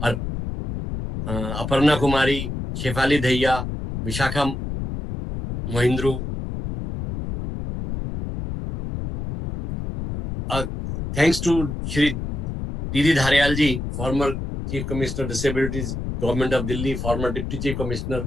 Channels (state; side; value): noise; left; rumble, 5 dB below the sound